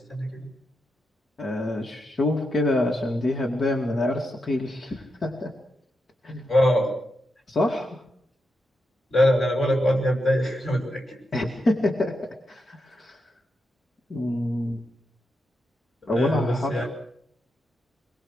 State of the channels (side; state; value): both; normal; correlation 0.85